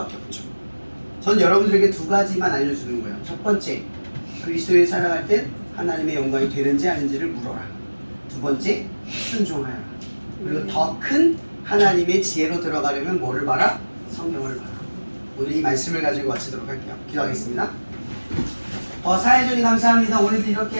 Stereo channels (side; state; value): both; inverted; correlation -1.00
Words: 없죠. 전 여러분들에게 두 가지만 알려주는 거예요. 첫 번째, 그리스도에 살아갈 때 하나님의 영광이 되는지 아닌지를 물어라. 두 번째, 순종하여라. 그리고 더 큰 하나님의 지혜로 들어가려면 뭐를 봐라? 성경을 봐라. 오늘 이 말씀을 가지고 마치도록 할게요. 기도하겠습니다. 사회적인 감사합니다. 오늘도 이렇게